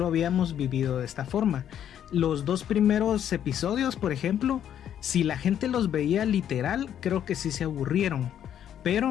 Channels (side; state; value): right; quieter; 9.9 dB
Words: habíamos vivido de esta forma. Los 2 primeros episodios, por ejemplo, si la gente los veía literal, creo que sí se aburrieron,